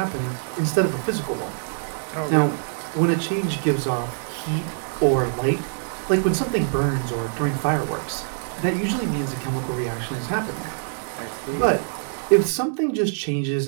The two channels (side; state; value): left; silent; digital silence